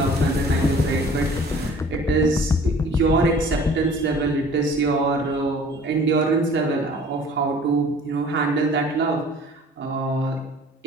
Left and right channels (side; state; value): both; normal; correlation 0.49